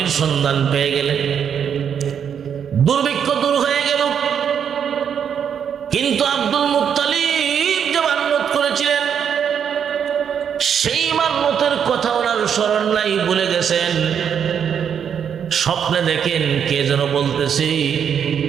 সন্ধান পেয়ে গেলেন, দুর্ভিক্ষ দূর হয়ে গেল। কিন্তু আব্দুল মুত্তালিব যে মান্নত করেছিলেন, সেই মান্নতের কথা ওনার স্মরণ নাই, ভুলে গেছেন। স্বপ্নে দেখেন কে যেন বলতেছে,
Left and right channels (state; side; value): quieter; left; 8.0 dB